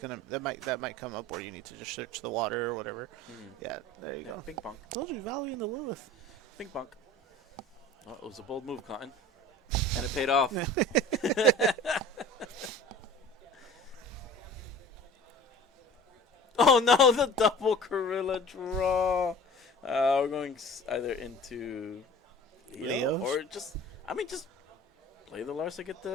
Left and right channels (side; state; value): both; normal; correlation 0.42